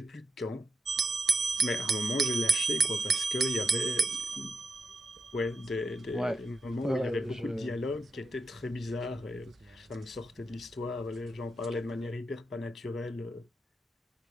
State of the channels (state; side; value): normal; both; correlation 0.84